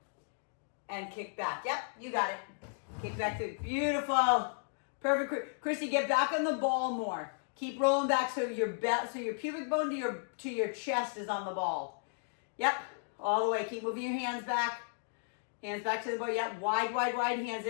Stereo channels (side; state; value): right; silent; digital silence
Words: and kick back. Yep, you got it. Kick back through. Beautiful. Perfect. Christy, get back on the ball more. Keep rolling back so your pubic bone to your chest is on the ball. Yep, all the way. Keep moving your hands back. Hands back to the ball. Yep, wide, wide, wide hands.